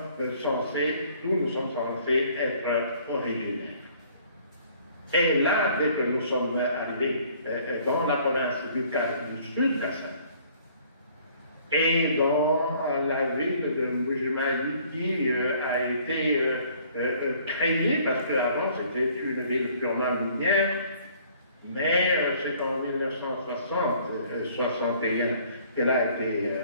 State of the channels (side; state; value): both; inverted; correlation -0.58